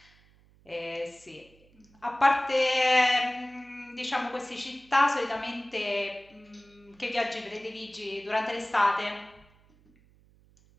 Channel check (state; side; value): noise; right; hum, 30 dB below the sound